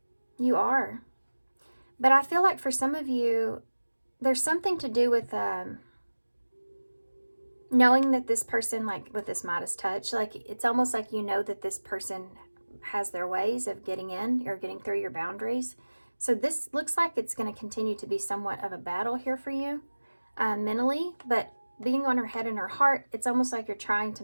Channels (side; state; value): both; inverted; correlation -1.00